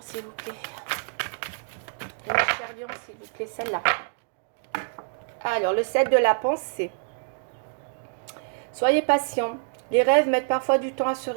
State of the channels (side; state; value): left; silent; digital silence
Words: s'il vous plaît. Et mes chers lions, s'il vous plaît, celle-là. Alors, le 7 de la pensée. Soyez patient. Les rêves mettent parfois du temps à se